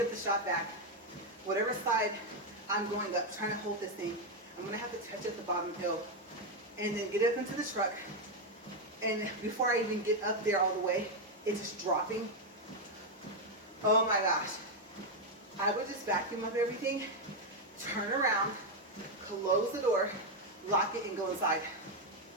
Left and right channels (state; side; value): normal; both; correlation 0.03